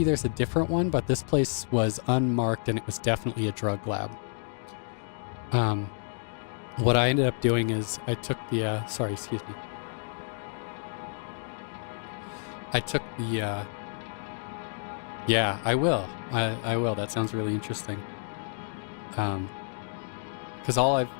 a different one, but this place was unmarked and it was definitely a drug lab. What I ended up doing is I took the, sorry, excuse me. I took the, yeah, I will. I will. That sounds really interesting. Because all I've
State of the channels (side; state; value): right; silent; digital silence